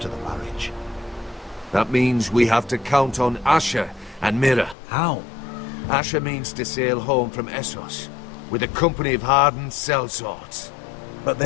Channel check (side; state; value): right; drops out; at 4.8 s